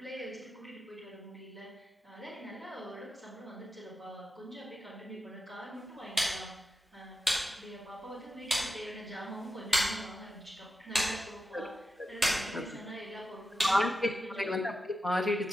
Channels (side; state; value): both; normal; correlation 0.89